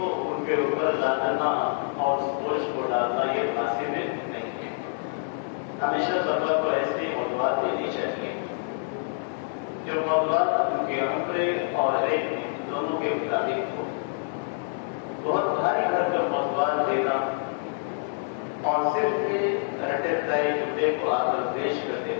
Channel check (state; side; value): silent; right; digital silence